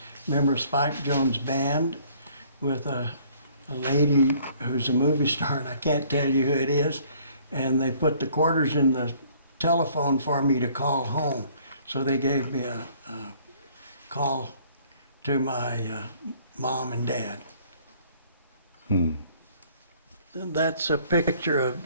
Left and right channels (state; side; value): inverted; both; correlation -0.59